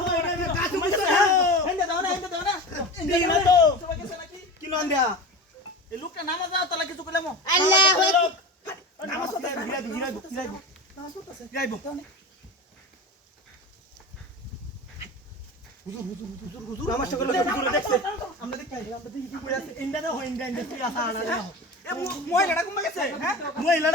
কাছে বুঝতে হেন্দে দাও না এই না তো সবাই গেছে নাকি কি নাম দেয়া এ লোকটা নামাজ দাও তালা কিছু কইলাম নামাজ পড়তে গিরাইবো নামাজটা কইরা লোক হুজুর দেখছে আমরা দেখি কি কইরা আছে ইন্দা না হয় ইন্দা তুই আসা না এ মহিলাটা ঘুমা গেছে হ্যাঁ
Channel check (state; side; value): normal; both; correlation 0.29